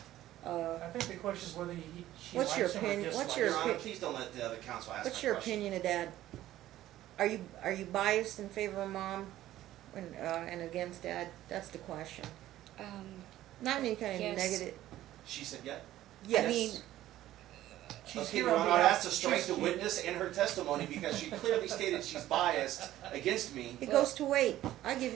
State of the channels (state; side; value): quieter; left; 14.1 dB